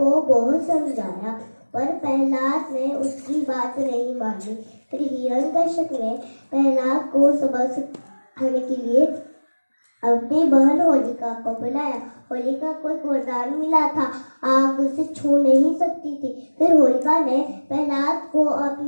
बहुत समझाया, पर प्रहलाद ने उसकी बात नहीं मानी। फिर हिरण्यकश्यप ने प्रहलाद को सबक सिखाने के लिए अपनी बहन होलिका को बुलाया। होलिका को एक वरदान मिला था, आग उसे छू नहीं सकती थी। फिर होलिका ने प्रहलाद को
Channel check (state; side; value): inverted; both; correlation -1.00